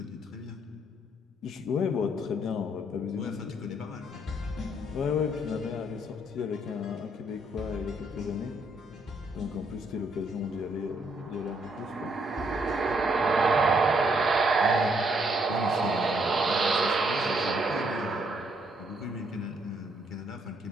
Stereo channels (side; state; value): both; normal; correlation 0.71